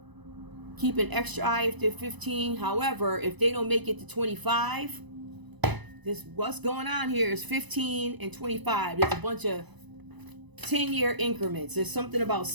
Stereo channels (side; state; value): left; late; 1.0 ms